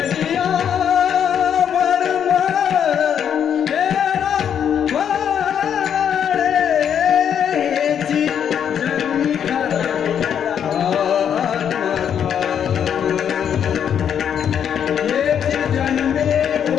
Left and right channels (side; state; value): right; quieter; 8.5 dB